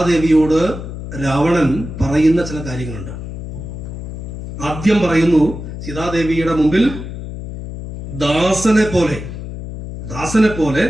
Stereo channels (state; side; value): noise; left; hum, 9 dB below the sound